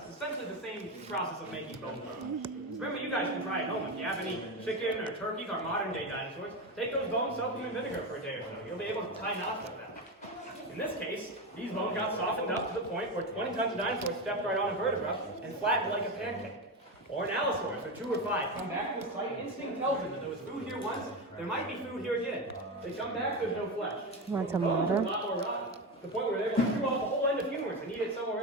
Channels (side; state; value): both; normal; correlation 0.17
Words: It's essentially the same process of making bone bones. Remember, you guys can try at home. If you have any chicken or turkeys or modern-day dinosaurs, take those bones, soak them in vinegar for a day or so. You'll be able to tie knots with them. In this case, these bones got softened up to the point where 20 tons of dinosaurs stepped right on a vertebra and flattened like a pancake. Or an allosaurus, or 2 or 5, come back to the site. Instinct tells them that there was food here once, there might be food here again. They come back, there's no flesh. Want some Bones are water? a lot more rotten, to the point where they're able to chew off a whole end of humerus and eat it somewhere